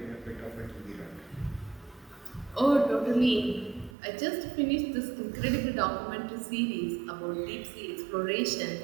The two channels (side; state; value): left; drops out; at 4.0 s